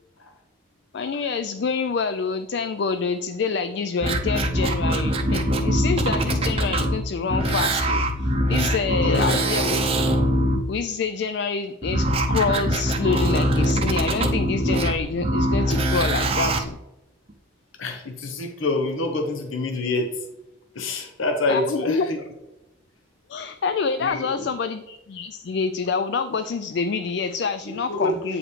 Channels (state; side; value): normal; both; correlation 0.33